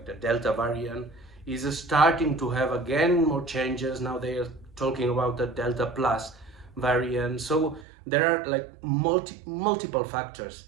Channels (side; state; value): left; drops out; at 7.9 s